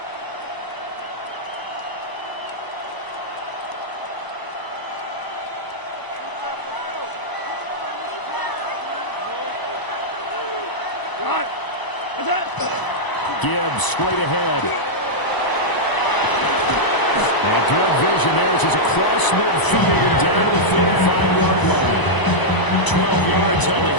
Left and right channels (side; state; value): right; late; 1.0 ms